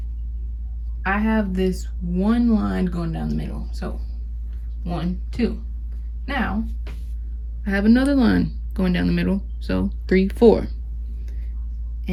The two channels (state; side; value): identical; both; correlation 1.00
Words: I have this one line going down the middle. So 1, 2. Now I have another line going down the middle. So 3, 4.